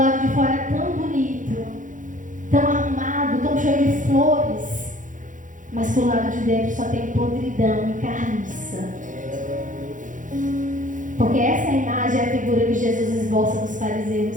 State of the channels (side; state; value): left; late; 0.37 ms